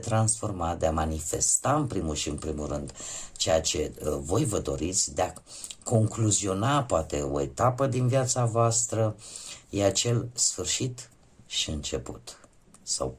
de a manifesta în primul și în primul rând ceea ce voi vă doriți, de a concluziona poate o etapă din viața voastră, e acel sfârșit și început, sau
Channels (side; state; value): both; identical; correlation 1.00